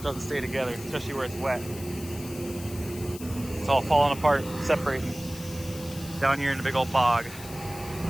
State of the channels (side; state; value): left; noise; hiss, 15 dB below the sound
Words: doesn't stay together, especially where it's wet. It's all falling apart, separating down here in the big old bog.